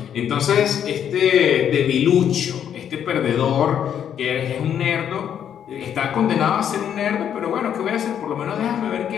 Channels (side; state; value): right; quieter; 9.1 dB